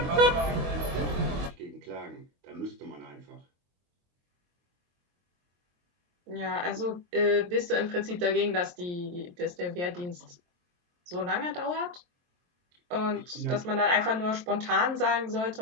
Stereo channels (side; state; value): left; late; 23 ms